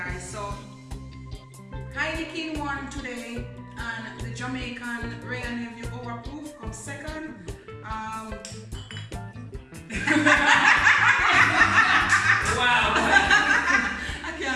So Heineken won today, and the Jamaican Ray and Nephew overproof comes second. Wow. I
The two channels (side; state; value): both; identical; correlation 1.00